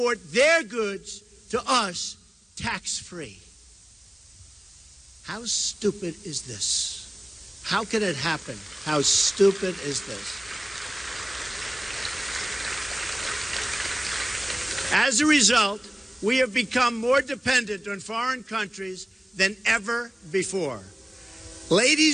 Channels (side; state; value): both; normal; correlation 0.98